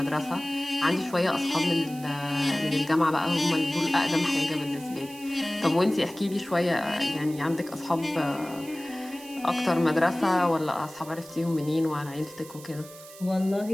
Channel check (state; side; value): noise; right; hiss, 18 dB below the sound